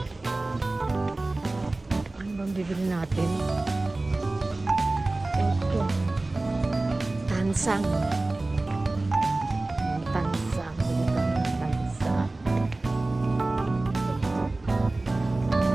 Ano bang bibili natin? Ito. Tansang. Tansang. Bili tayo ng tansang.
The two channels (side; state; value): left; quieter; 3.0 dB